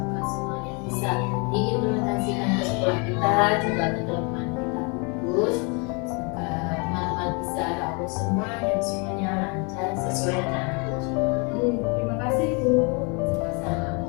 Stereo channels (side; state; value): right; quieter; 32.9 dB